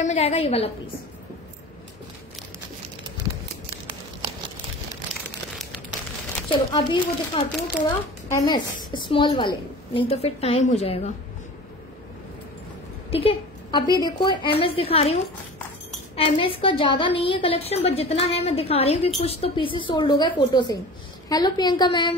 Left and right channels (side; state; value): both; normal; correlation 0.37